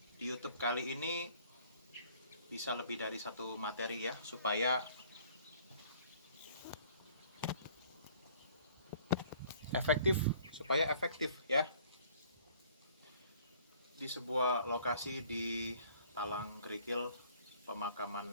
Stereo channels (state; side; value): inverted; both; correlation -0.56